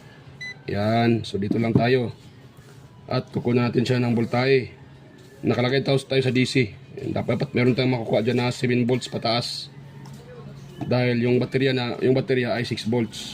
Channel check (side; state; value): both; identical; correlation 1.00